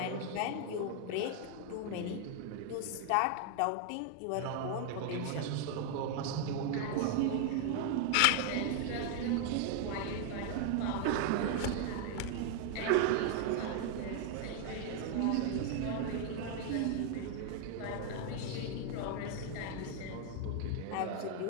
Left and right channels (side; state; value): both; different; correlation 0.00